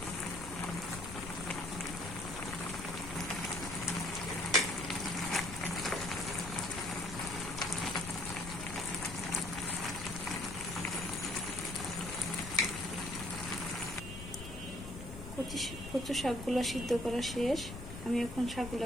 কচু শাকগুলো সিদ্ধ করা শেষ। আমি এখন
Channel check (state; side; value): noise; left; rumble, 10 dB below the sound